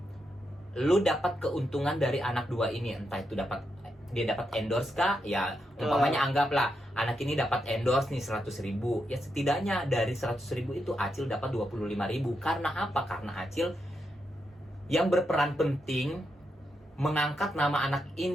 lu dapat keuntungan dari anak 2 ini, entah itu dia dapat endorse kah, ya umpamanya anggaplah anak ini dapat endorse nih 100.000, ya setidaknya dari 100.000 itu Acil dapat 25.000. Karena apa? Karena Acil yang berperan penting mengangkat nama anak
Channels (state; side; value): normal; both; correlation 0.83